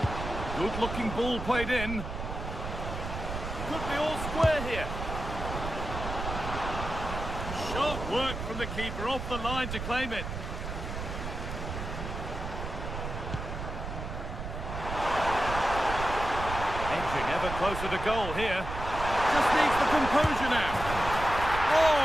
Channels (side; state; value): right; noise; rumble, 6 dB below the sound